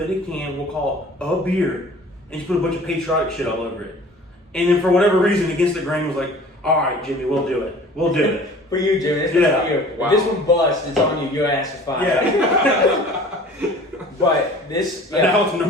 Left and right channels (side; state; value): both; normal; correlation 0.46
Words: it in a can, we'll call it a beer, and just put a bunch of patriotic shit all over it. And then for whatever reason, Against the Grain was like, all right, Jimmy, we'll do it. We'll do it. For you, Jimmy. This Yeah. for you. Wow. If this one busts, it's on you. Your ass is fine. Yeah. But this, And now it's